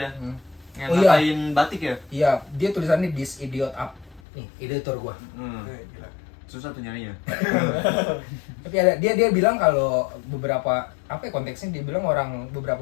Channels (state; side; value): drops out; right; at 4.2 s